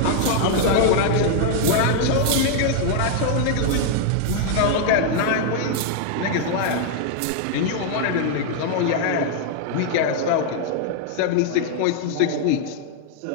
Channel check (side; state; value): both; different; correlation 0.00